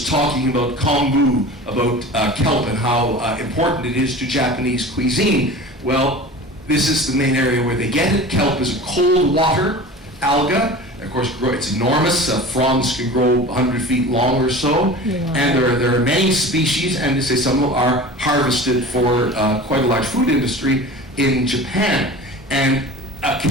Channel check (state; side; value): normal; both; correlation 0.37